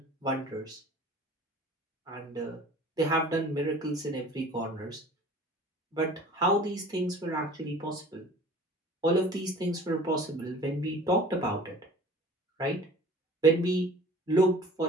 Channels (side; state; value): both; normal; correlation 0.46